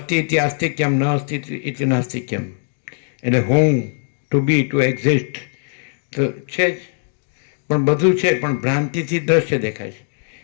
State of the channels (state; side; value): silent; right; digital silence